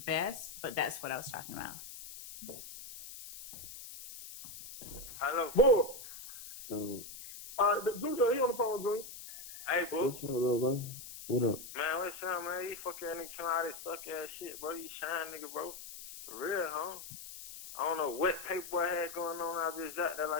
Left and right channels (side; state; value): left; noise; hiss, 12 dB below the sound